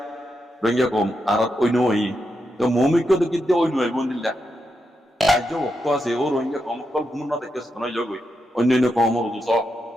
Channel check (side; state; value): both; normal; correlation 0.85